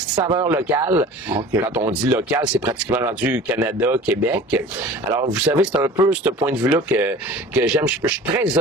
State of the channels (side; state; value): both; normal; correlation 0.42